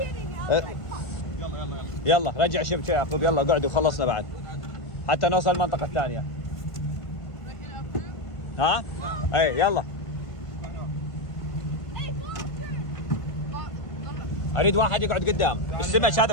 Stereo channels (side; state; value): right; late; 1.5 ms